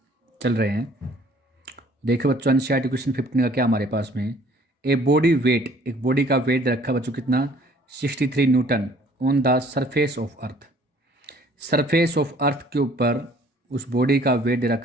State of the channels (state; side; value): normal; both; correlation 0.56